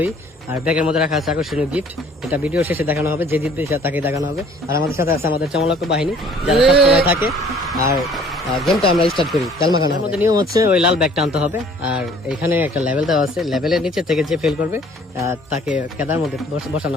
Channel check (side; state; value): both; normal; correlation 0.55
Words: আর ব্যাগের মধ্যে রাখা আছে আকর্ষণীয় গিফট। এটা ভিডিও শেষে দেখানো হবে, যে জিতবে তাকে দেখানো হবে। আর আমাদের সাথে আছে আমাদের চমলক্ষ বাহিনী, যারা সবসময় থাকে। আর গেমটা আমরা স্টার্ট করি। তেলমাখানোর মধ্যে নিয়ম হচ্ছে ওই লাল ব্যাগটা আনতে হবে। আর এখানে একটা লেভেল দেওয়া আছে, লেভেলের নিচে থেকে যে ফেল করবে তাকে কেদার মধ্যে